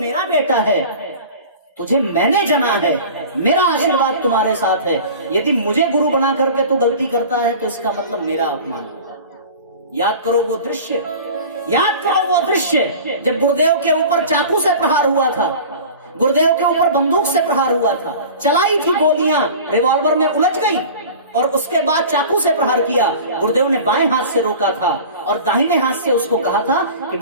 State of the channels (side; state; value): both; inverted; correlation -0.39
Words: बेटा है, तुझे मैंने जना है, मेरा आशीर्वाद तुम्हारे साथ है। यदि मुझे गुरु बना करके तू गलती करता है तो इसका मतलब मेरा अपमान होगा। याद करो वो दृश्य, याद करो वो दृश्य जब गुरुदेव के ऊपर चाकू से प्रहार हुआ था, गुरुदेव के ऊपर बंदूक से प्रहार हुआ था, चलाई थी गोलियां, रिवॉल्वर में उलझ गई और उसके बाद चाकू से प्रहार किया। गुरुदेव ने बाएं हाथ से रोका था और दाहिने हाथ से उसको कहा था कि